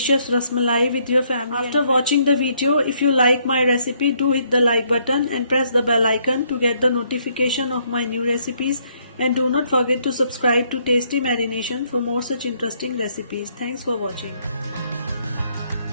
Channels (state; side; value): inverted; both; correlation -0.70